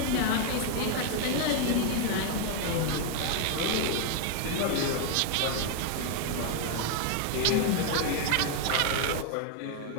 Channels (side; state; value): both; different; correlation 0.00